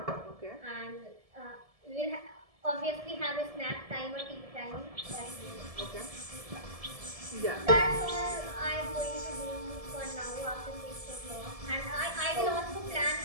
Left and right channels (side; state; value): left; late; 1.7 ms